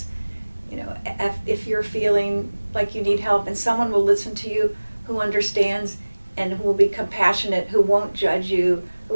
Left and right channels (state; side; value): inverted; both; correlation -1.00